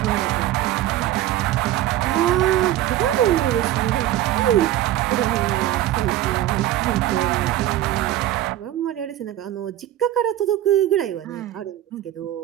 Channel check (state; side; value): quieter; left; 13.4 dB